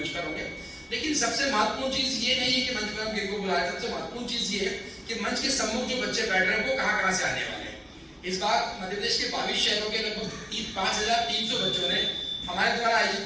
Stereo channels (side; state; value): both; identical; correlation 1.00